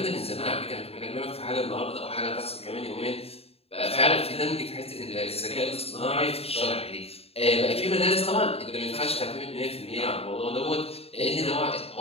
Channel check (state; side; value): late; right; 0.29 ms